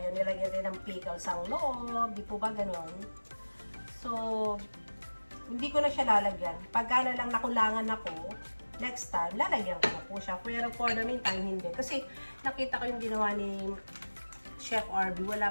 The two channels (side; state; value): both; inverted; correlation -1.00